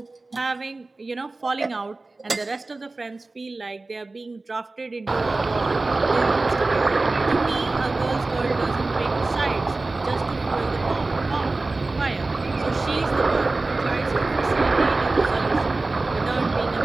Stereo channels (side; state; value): left; quieter; 3.3 dB